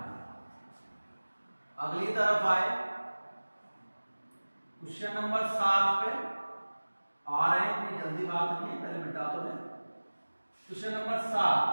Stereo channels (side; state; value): both; inverted; correlation -1.00